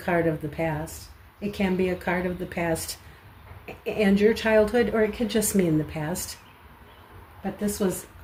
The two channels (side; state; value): both; identical; correlation 1.00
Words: of the past. It can be a card of the past and your childhood, or it could just mean the past. But this was